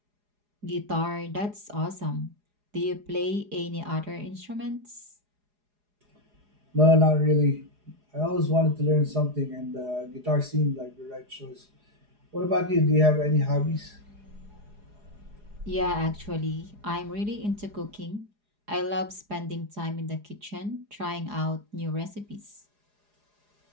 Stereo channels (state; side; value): late; left; 4.8 ms